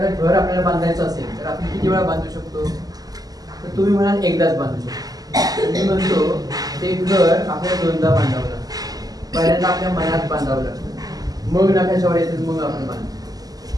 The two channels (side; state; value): left; late; 0.18 ms